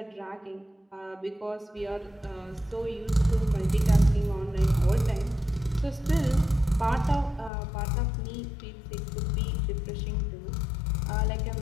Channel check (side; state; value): right; drops out; at 7.5 s